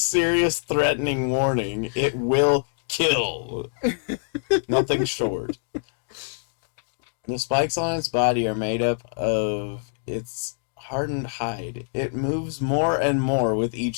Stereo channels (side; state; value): right; silent; digital silence